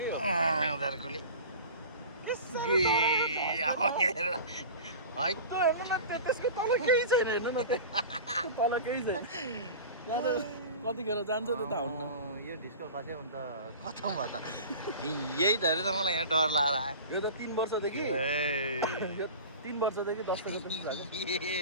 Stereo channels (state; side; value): inverted; both; correlation -0.36